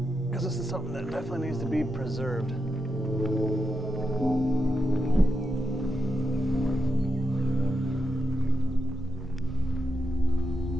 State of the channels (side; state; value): both; normal; correlation 0.86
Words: Because this is something that definitely needs to be preserved.